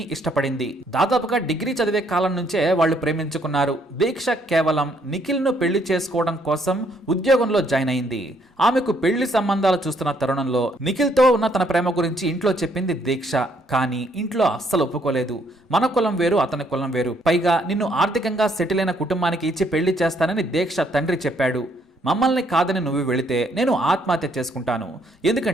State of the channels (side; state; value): both; normal; correlation 0.69